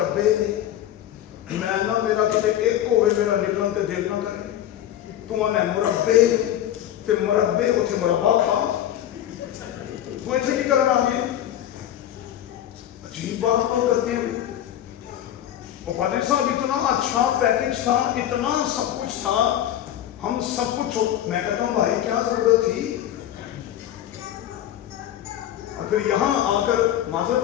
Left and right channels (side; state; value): right; quieter; 11.6 dB